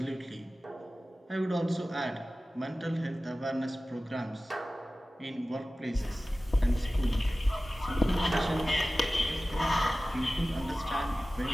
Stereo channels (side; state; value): both; normal; correlation 0.96